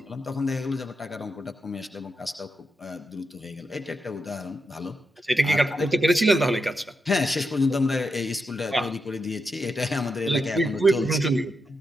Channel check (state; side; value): normal; both; correlation 0.85